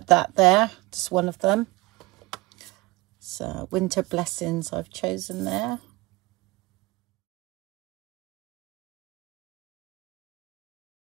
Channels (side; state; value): left; quieter; 22.4 dB